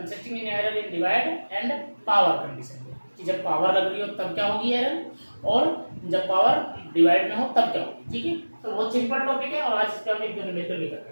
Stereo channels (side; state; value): both; inverted; correlation -1.00